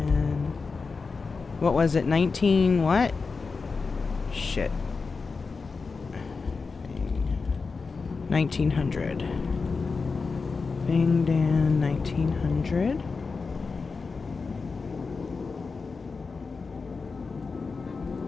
What was it? 19 what? Shit. 1900. Bing Dan 1900.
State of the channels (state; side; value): quieter; right; 4.5 dB